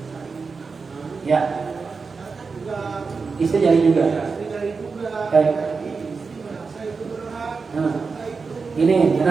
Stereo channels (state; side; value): quieter; left; 4.8 dB